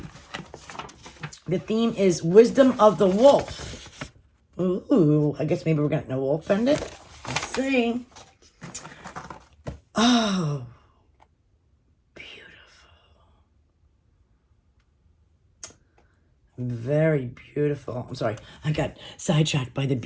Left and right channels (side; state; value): both; identical; correlation 1.00